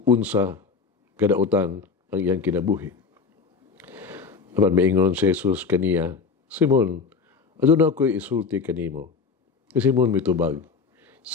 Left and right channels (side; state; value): right; quieter; 5.1 dB